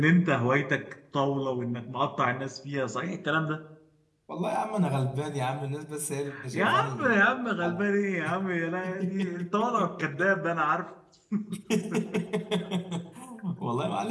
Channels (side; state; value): both; identical; correlation 1.00